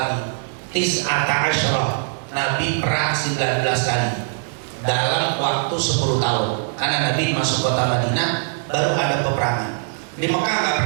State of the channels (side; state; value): left; silent; digital silence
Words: Tis'ata asyrah. Nabi perang 19 kali dalam waktu 10 tahun. Karena Nabi masuk kota Madinah baru ada peperangan. Di Mekah nggak